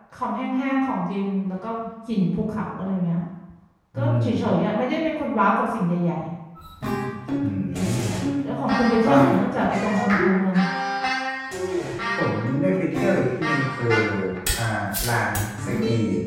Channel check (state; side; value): identical; both; correlation 1.00